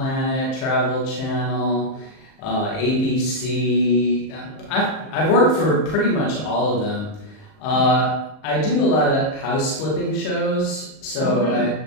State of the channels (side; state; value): right; late; 38 ms